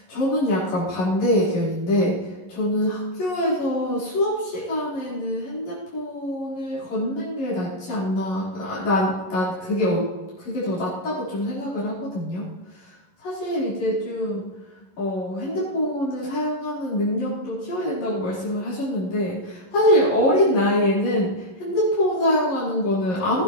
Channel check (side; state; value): right; late; 11 ms